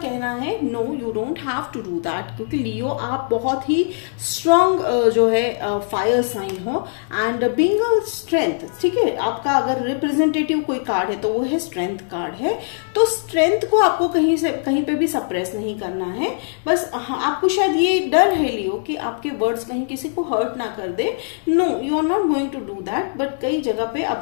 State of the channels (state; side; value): silent; right; 63 dB below the other